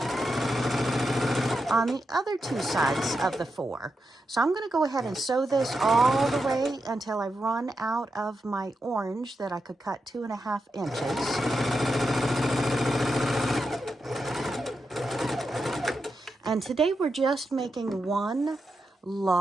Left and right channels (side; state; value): both; normal; correlation 0.87